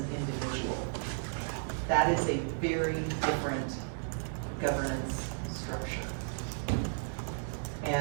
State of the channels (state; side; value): silent; left; digital silence